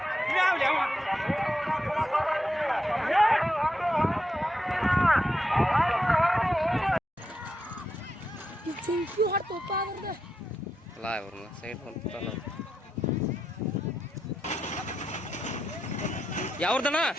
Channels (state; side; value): normal; both; correlation 0.84